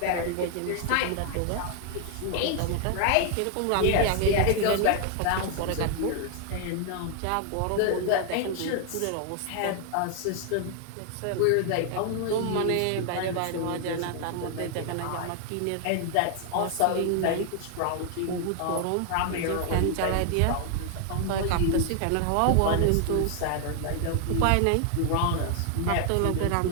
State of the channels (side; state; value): both; different; correlation 0.00